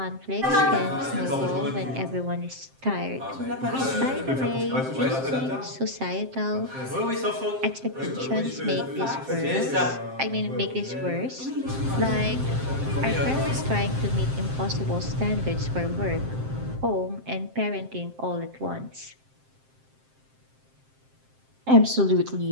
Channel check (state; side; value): late; left; 7.6 ms